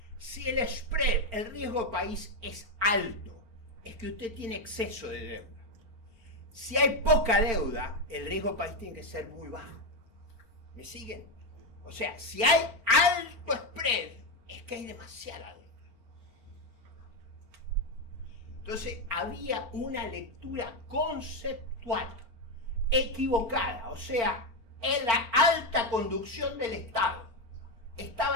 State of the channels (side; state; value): left; late; 4.4 ms